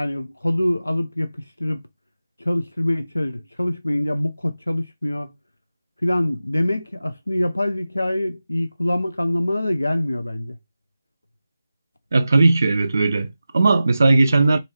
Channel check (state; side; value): inverted; both; correlation -0.94